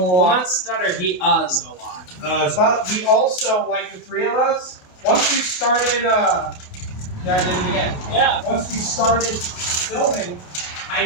a Well, lot. not stutter. He uhs a lot. But we also, like the three of us, once we started, yeah, I did it again. Yeah. Once we started filming, I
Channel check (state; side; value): late; right; 27 ms